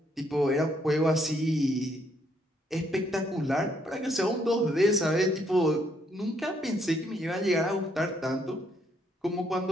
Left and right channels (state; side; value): normal; both; correlation 0.71